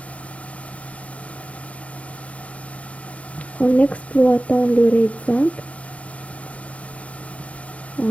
En exploitant le RAID 5,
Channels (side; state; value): right; late; 0.065 ms